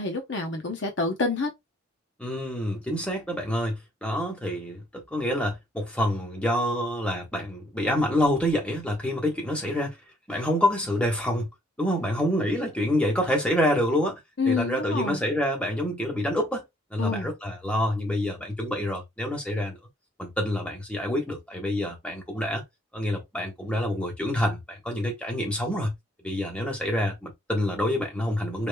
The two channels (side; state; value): both; normal; correlation 0.65